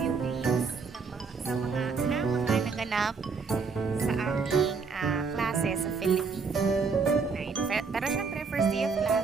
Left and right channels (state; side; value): quieter; left; 5.0 dB